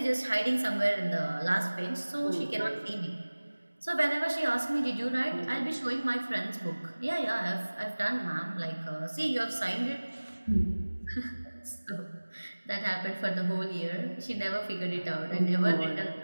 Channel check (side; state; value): both; inverted; correlation -1.00